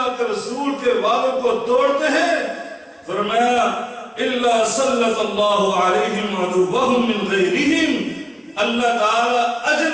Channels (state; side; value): identical; both; correlation 1.00